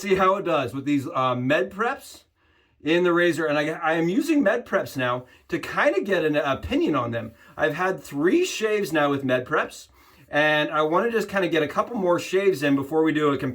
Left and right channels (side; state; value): both; identical; correlation 1.00